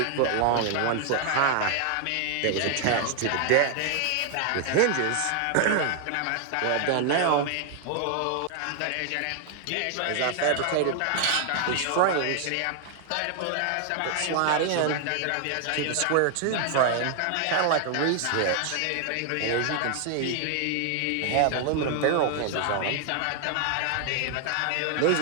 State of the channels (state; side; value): different; both; correlation 0.00